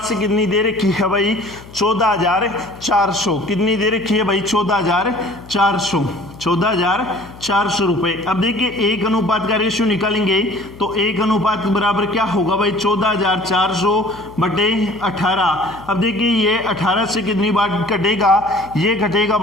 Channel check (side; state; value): left; noise; hum, 19 dB below the sound